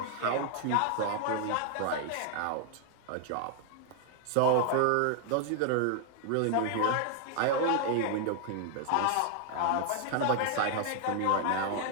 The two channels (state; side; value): different; both; correlation 0.00